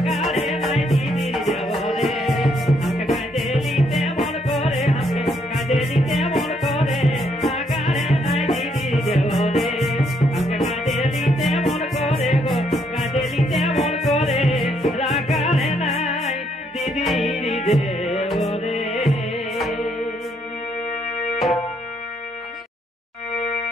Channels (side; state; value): both; normal; correlation 0.72